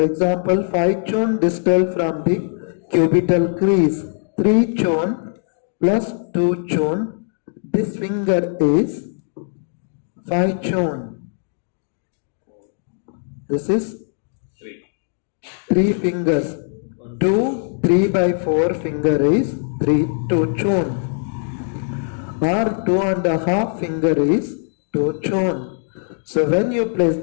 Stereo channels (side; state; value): right; silent; digital silence